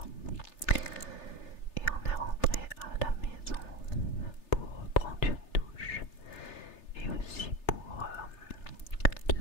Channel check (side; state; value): right; late; 3.3 ms